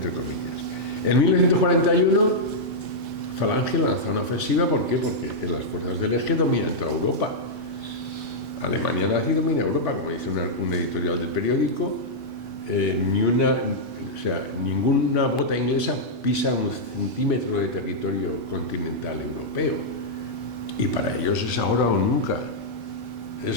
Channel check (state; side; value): normal; both; correlation -0.07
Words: comillas. En 1941, Falange lanza una ofensiva. ¿Por qué? Porque las fuerzas del Eje dominan toda Europa. Alemania nazi domina Europa, como dice un editorial del periódico. Ninguna bota inglesa pisa un centímetro de territorio continental europeo. Y para ellos es ahora o nunca.